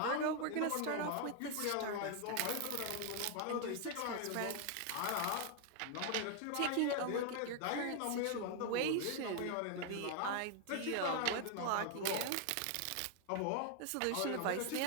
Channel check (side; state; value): both; different; correlation 0.00